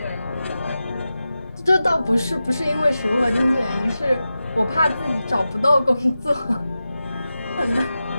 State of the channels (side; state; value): both; inverted; correlation -0.92